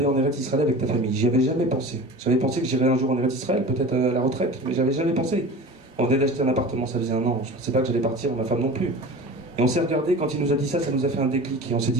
en Eretz Israël avec ta famille. J'y avais jamais pensé. J'avais pensé que j'irais un jour en Eretz Israël, peut-être à la retraite, mais j'avais jamais pensé. On venait d'acheter un appartement, ça faisait un an. Je ne pensais pas que j'allais partir, ma femme non plus. Et on s'est regardé, quand il nous a dit ça, ça nous a fait un déclic. Et on s'est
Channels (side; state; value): both; normal; correlation 0.36